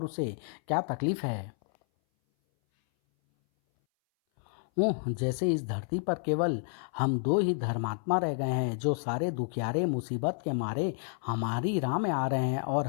उसे क्या तकलीफ है। जैसे इस धरती पर केवल हम दो ही धर्मात्मा रह गए हैं जो सारे दुखियारे मुसीबत के मारे हमारी राह में आ रहे हैं और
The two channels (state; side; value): silent; right; 58 dB below the other